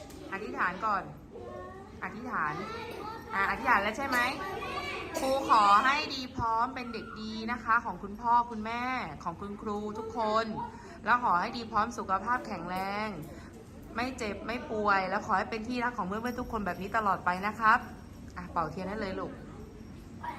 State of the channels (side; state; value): both; identical; correlation 1.00